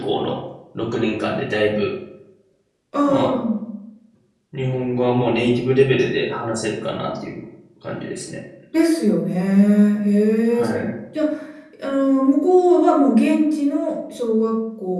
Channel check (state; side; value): identical; both; correlation 1.00